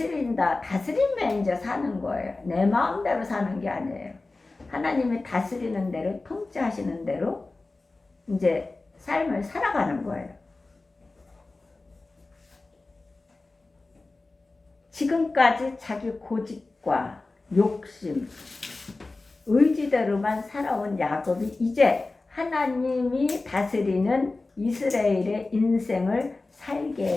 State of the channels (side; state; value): right; quieter; 3.4 dB